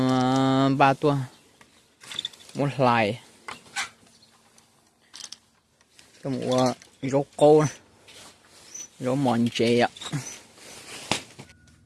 ba tua một lại cái mùa rô cô này rô mòn chè ạ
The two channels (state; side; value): identical; both; correlation 1.00